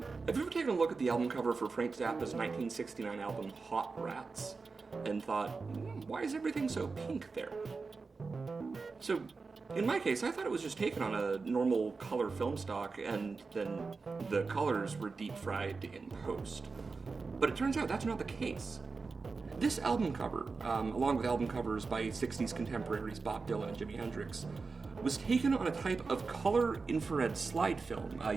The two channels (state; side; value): quieter; left; 4.4 dB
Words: Have you ever taken a look at the album cover for Frank Zappa's 1969 album Hot Rats and thought, why is everything so pink there? So, in my case, I thought it was just taken on a normal color film stock and then the colors were deep fried in post. But it turns out that's not the case. This album cover, along with album covers by 60s contemporaries Bob Dylan and Jimi Hendrix, was taken on a type of color infrared slide film